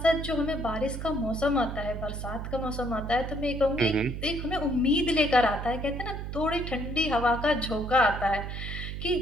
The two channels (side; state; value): right; noise; hum, 6 dB below the sound